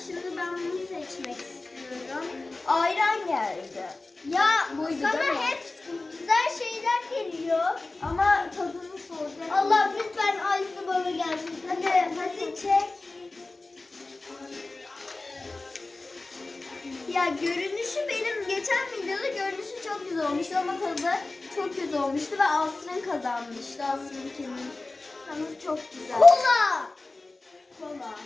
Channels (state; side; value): quieter; right; 3.2 dB